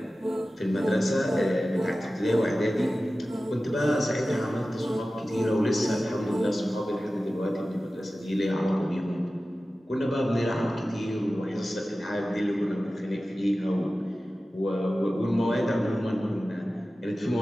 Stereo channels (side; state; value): both; normal; correlation 0.95